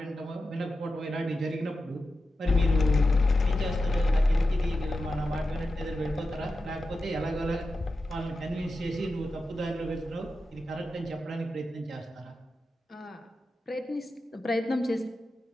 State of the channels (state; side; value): normal; both; correlation 0.91